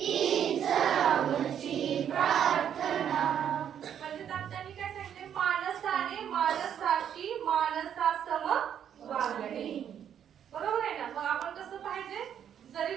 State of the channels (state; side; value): quieter; left; 9.1 dB